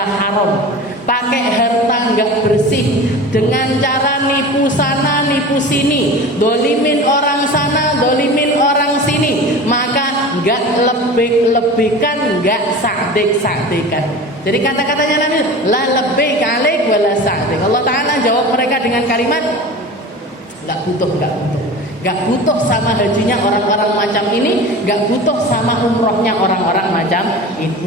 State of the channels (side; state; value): both; normal; correlation 0.34